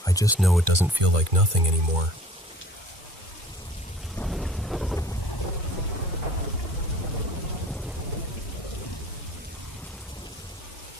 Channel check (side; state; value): both; normal; correlation 0.48